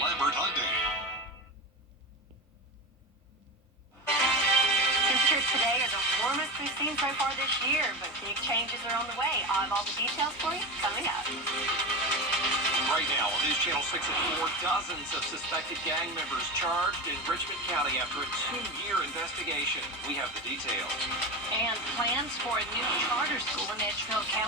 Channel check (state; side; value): normal; both; correlation 0.23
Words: Hyundai. Temperatures today are the warmest we've seen so far this year, but big changes are on the way. I'll have all the details for you coming up. Right now on News Channel 6 at 4, dozens of suspected gang members charged in Richmond County after a 2-year investigation. We have the details. And plans for a new charter school in Edgefield